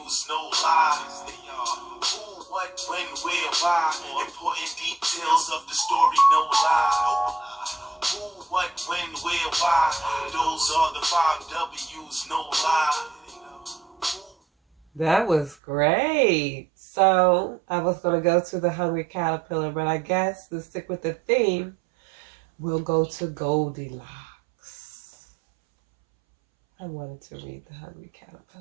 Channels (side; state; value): left; drops out; at 15.6 s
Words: no lies. They are who, what, when, where, why. Important details of the story, no lie. Who, what, when, where, why. Those are the 5 W's, no lie. That was great. So I was going to go to the Hungry Caterpillar, but I guess to stick with the theme, we'll go to Goldilocks. I wanted to read the Hungry